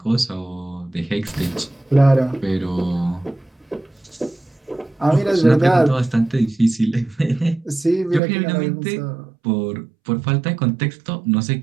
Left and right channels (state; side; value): drops out; left; at 8.2 s